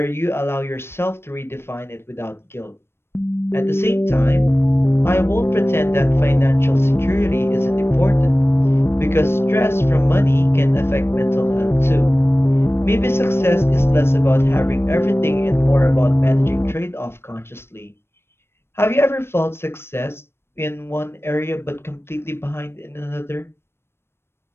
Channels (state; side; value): late; right; 0.12 ms